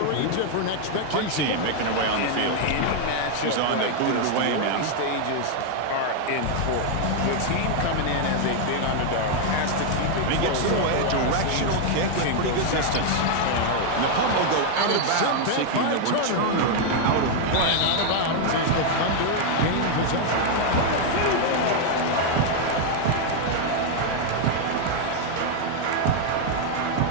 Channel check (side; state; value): both; different; correlation 0.00